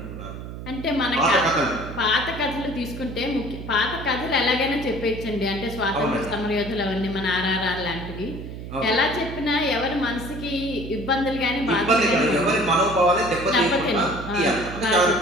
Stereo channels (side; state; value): right; noise; hum, 10 dB below the sound